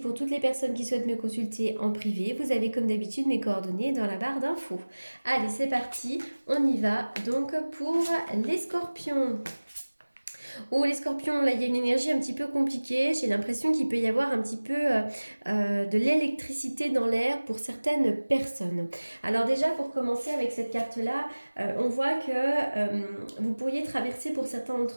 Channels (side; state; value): both; inverted; correlation -1.00